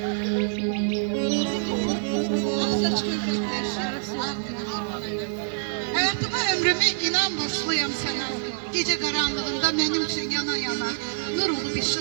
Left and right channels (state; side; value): silent; left; 61 dB below the other